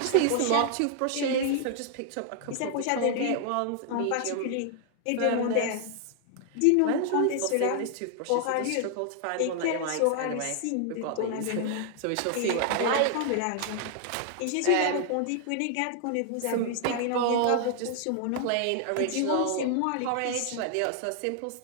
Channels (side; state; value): both; different; correlation 0.00